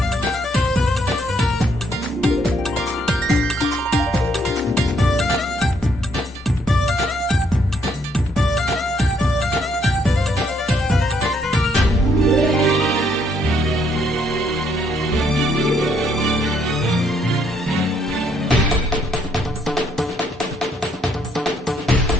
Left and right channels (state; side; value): normal; both; correlation 0.70